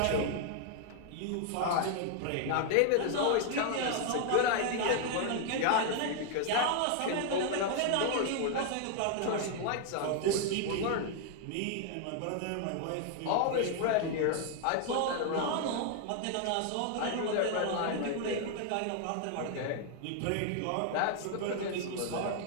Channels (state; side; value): different; both; correlation 0.00